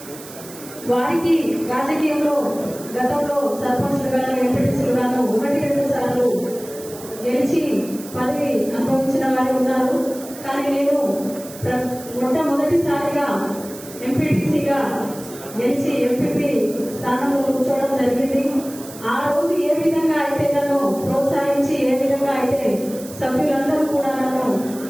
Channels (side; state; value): right; noise; hiss, 16 dB below the sound